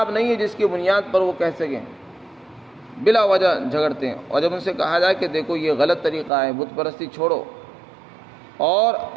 نہیں ہے جس کی بنیاد پر وہ کہہ سکیں، بلا وجہ جھگڑتے ہیں۔ اور جب ان سے کہا جائے کہ دیکھو یہ غلط طریقہ ہے، بت پرستی چھوڑو اور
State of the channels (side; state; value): left; drops out; at 6.3 s